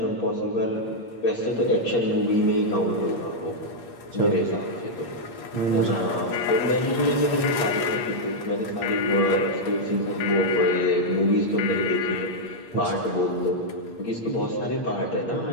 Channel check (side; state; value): right; late; 8.6 ms